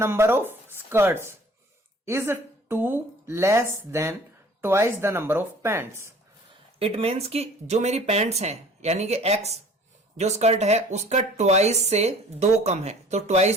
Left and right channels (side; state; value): both; normal; correlation 0.50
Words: of skirts is 2 less than twice the number of pants. It means कि जो मेरी पैंट्स हैं यानी कि x जो स्कर्ट है उसका ट्वाइस से 2 कम है, तो